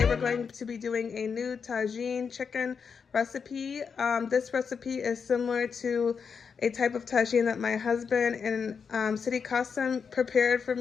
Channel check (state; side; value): quieter; right; 6.1 dB